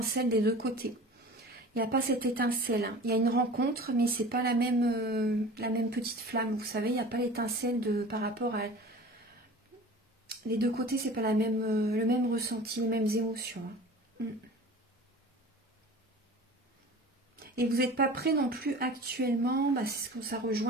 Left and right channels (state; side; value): normal; both; correlation 0.40